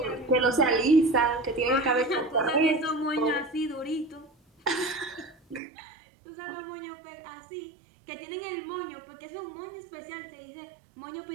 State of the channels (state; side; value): drops out; left; at 5.6 s